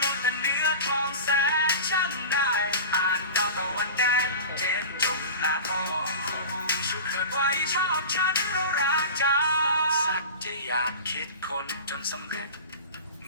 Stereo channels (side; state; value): both; inverted; correlation -0.33